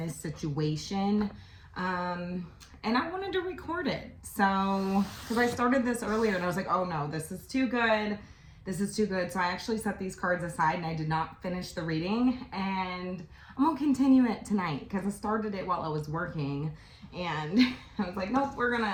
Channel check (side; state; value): both; identical; correlation 1.00